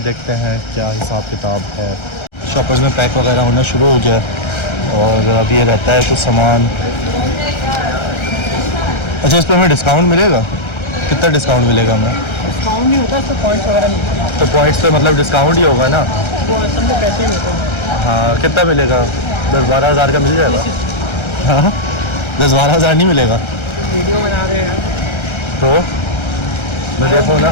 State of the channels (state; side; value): late; right; 1.3 ms